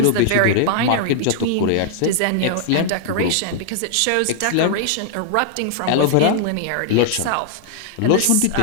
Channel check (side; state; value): both; different; correlation -0.01